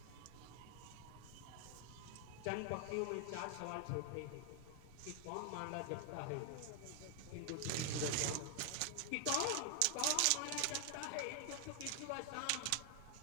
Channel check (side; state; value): both; different; correlation 0.00